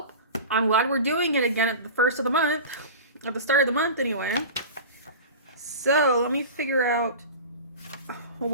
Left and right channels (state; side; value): inverted; both; correlation -0.33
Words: I'm glad we're doing it again at the first of the month. At the start of the month, anyway. So let me figure out